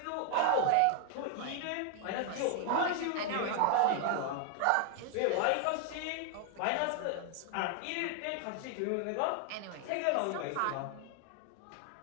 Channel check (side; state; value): both; different; correlation 0.00